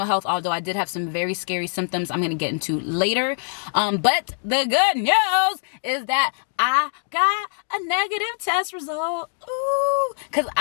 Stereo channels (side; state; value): right; silent; digital silence